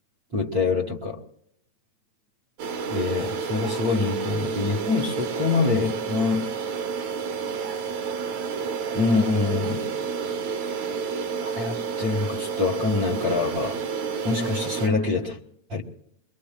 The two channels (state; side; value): late; left; 9.0 ms